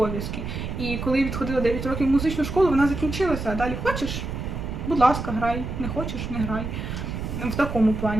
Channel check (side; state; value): right; noise; rumble, 5 dB below the sound